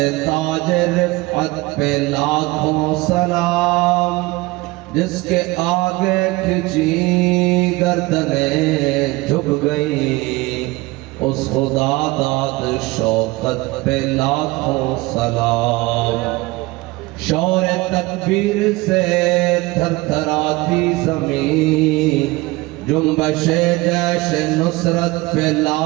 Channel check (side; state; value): left; quieter; 21.5 dB